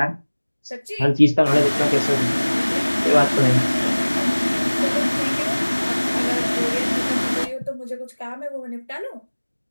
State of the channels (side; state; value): both; inverted; correlation -1.00